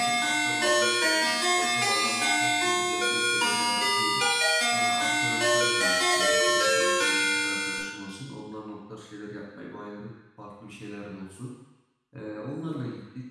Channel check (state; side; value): identical; both; correlation 1.00